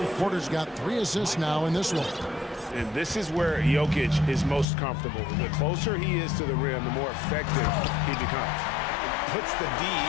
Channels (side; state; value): right; drops out; at 4.7 s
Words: Porter's got 3 assists now in this one. And this is where Jokic is most comfortable. The closer he is to the rim, the more effective he becomes. Puts the D